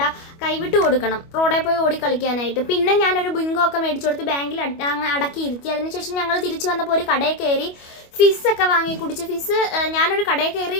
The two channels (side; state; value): right; late; 25 ms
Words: കൈവിട്ട് കൊടുക്കണം റോഡിൽ പോയി ഓടി കളിക്കാനായിട്ട്. പിന്നെ ഞാനൊരു ബിങ്കോ ഒക്കെ മേടിച്ചു കൊടുത്ത് ബാങ്കിൽ അടക്കിയിരുത്തി. അതിനുശേഷം ഞങ്ങൾ തിരിച്ചു വന്നപ്പോൾ ഒരു കടയിൽ കയറി ഫിസ്സൊക്കെ വാങ്ങി കുടിച്ച്. ഫിസ് ഞാനൊരു കടയിൽ കയറി